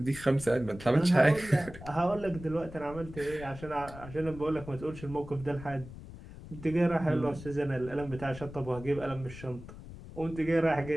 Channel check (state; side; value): noise; left; rumble, 14 dB below the sound